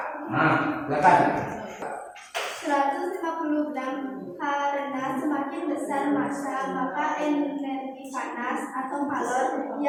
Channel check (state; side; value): identical; both; correlation 1.00